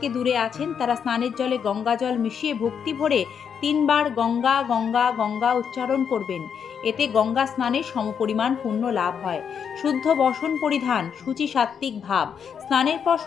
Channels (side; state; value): right; quieter; 7.3 dB